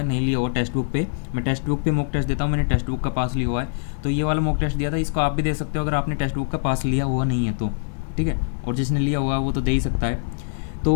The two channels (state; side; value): silent; right; digital silence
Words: नहीं लिया हुआ टेक्स्ट बुक पे, मैं टेक्स्ट बुक पे मॉक टेस्ट देता हूँ, मैंने टेक्स्ट बुक का पास लिया हुआ है तो ये वाला मॉक टेस्ट दिया था। इसको आप भी दे सकते हो अगर आपने टेक्स्ट बुक का पास लिया हुआ नहीं है तो, ठीक है। और जिसने लिया हुआ वो तो दे ही सकता है।